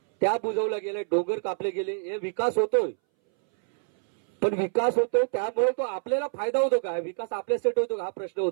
त्या बुजवल्या गेल्या, डोंगर कापले गेले. हे विकास होतोय, पण विकास होतो त्यामुळे तो आपल्याला फायदा होतो का? विकास आपल्यासाठी होतो का, हा प्रश्न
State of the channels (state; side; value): silent; left; 61 dB below the other